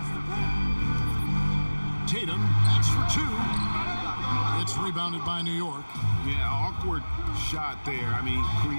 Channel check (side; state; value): both; inverted; correlation -1.00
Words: Tatum, that's for two. It's rebounded by New York. Yeah, awkward shot there. I mean,